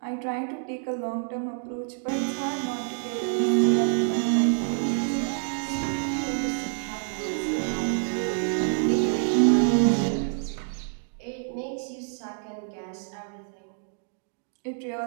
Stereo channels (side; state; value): left; silent; 60 dB below the other